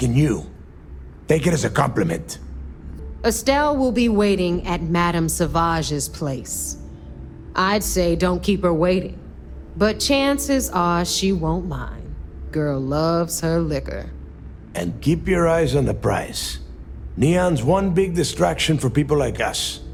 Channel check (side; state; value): both; identical; correlation 1.00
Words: you. Take it as a compliment. Estelle will be waiting at Madame Sauvage's place. I'd say don't keep her waiting, but chances are she won't mind. Girl loves her liquor. And keep your eyes on the prize. Neon's one big distraction for people like us,